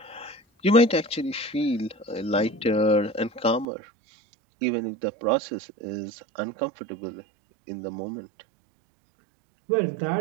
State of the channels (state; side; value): drops out; left; at 3.7 s